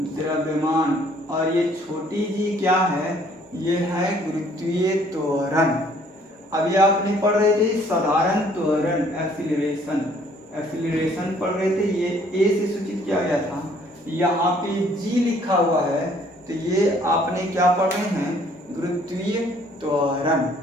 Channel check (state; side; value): normal; both; correlation 0.60